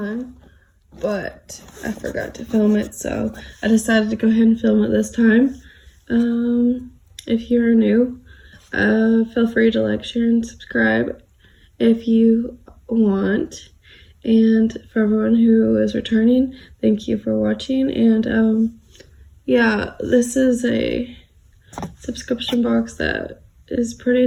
but I forgot to film it, so I decided to go ahead and film it this time. If you're new, feel free to like, share, and subscribe if you want. And for everyone who is returning, thank you for watching. And yeah, this is a subscription box that is pretty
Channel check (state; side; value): identical; both; correlation 1.00